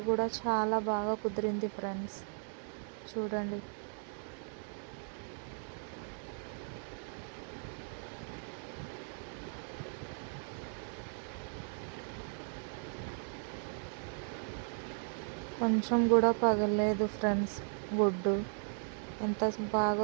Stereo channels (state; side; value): silent; left; 53 dB below the other